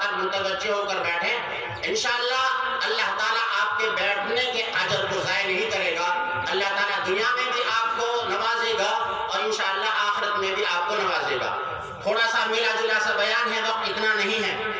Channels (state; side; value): identical; both; correlation 1.00